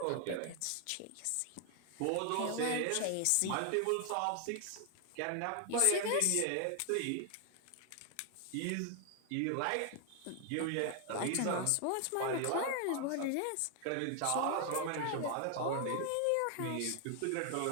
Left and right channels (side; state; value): both; different; correlation 0.00